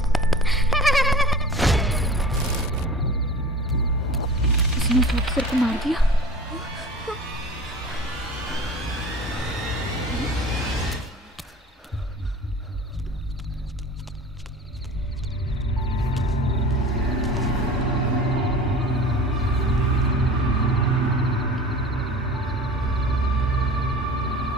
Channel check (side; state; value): both; normal; correlation 0.39